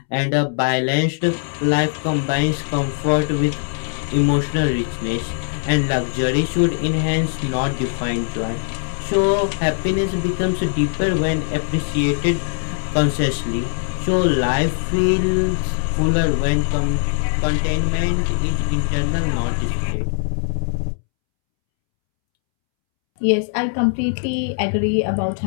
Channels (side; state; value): right; silent; 65 dB below the other